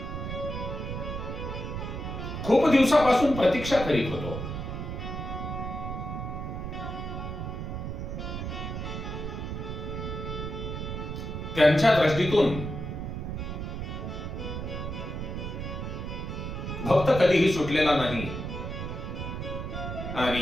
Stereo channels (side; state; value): right; noise; rumble, 5 dB below the sound